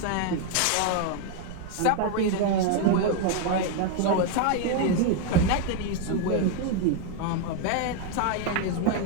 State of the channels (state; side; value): different; both; correlation 0.01